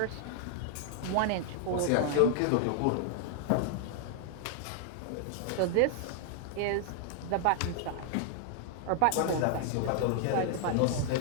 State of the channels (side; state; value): both; different; correlation 0.00